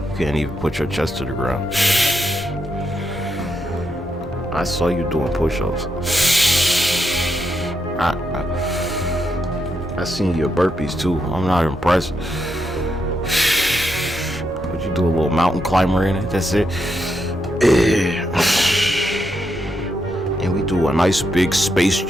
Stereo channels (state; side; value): normal; both; correlation 0.82